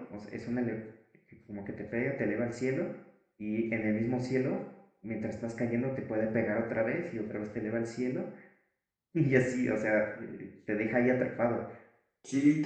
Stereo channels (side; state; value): both; identical; correlation 1.00